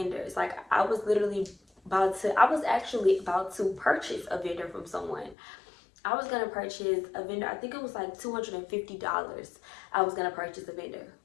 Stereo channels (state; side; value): drops out; right; at 5.4 s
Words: Like I was actually about to purchase a vendor from someone. I was gonna purchase a vendor. I think it was like $250. I was gonna purchase a vendor.